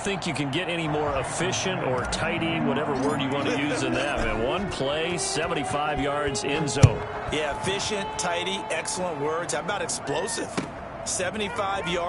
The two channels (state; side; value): identical; both; correlation 1.00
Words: you can get any more efficient or tidy, whatever word you want to use in that. Man, one play, 75 yards, end zone. Yeah, efficient, tidy, excellent words. How about explosive? 75